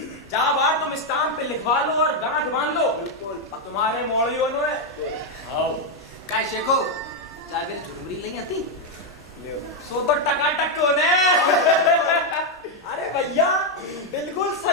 जहाँ बार तुम स्टाम्प पे लिखवा लो और गांठ बांध लो तुम्हारे मोड़ियों ने आओ काय शेखो जागर झुरमुरी नहीं आती सो तो टकाटक को ने अरे भैया बिल्कुल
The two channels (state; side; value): normal; both; correlation 0.02